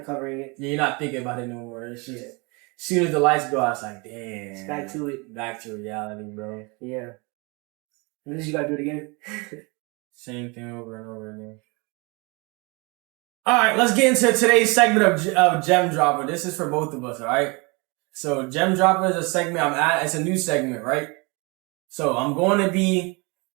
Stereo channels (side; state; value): left; quieter; 28.8 dB